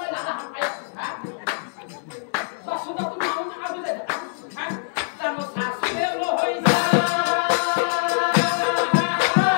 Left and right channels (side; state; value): right; silent; digital silence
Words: লাগা পাইছো হা তুমি আউন আবু দে হ্যাঁ তার শাশুড়ে লো হই যা